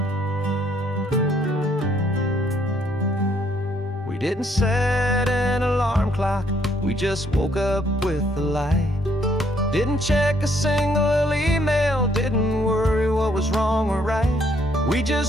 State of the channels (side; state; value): both; normal; correlation 0.68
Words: We didn't set an alarm clock, we just woke up with the light. Didn't check a single email, didn't worry what was wrong or right. We